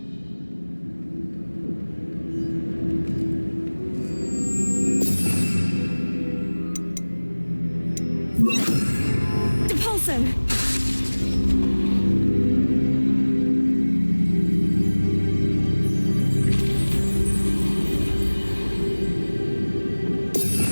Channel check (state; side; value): inverted; both; correlation -1.00